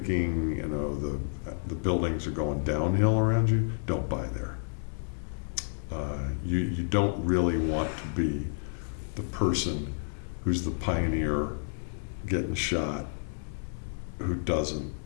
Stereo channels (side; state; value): right; silent; digital silence